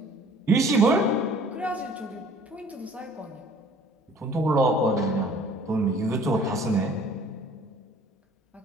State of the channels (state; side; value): normal; both; correlation 0.52